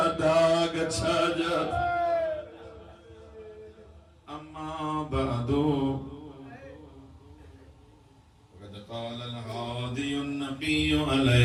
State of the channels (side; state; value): both; identical; correlation 1.00